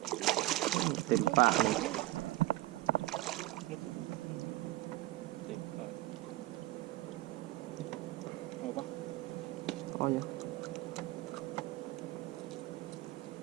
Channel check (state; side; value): quieter; left; 17.6 dB